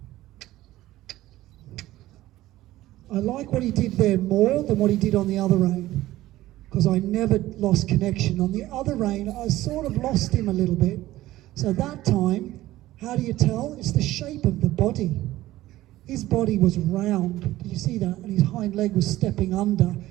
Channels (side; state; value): left; quieter; 15.9 dB